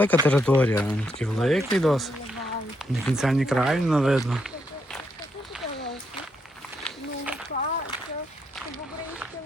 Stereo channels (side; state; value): both; normal; correlation 0.78